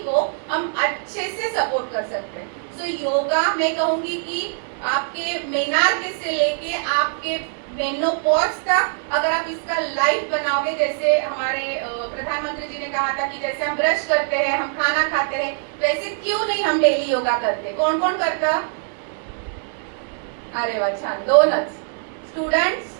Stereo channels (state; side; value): silent; left; digital silence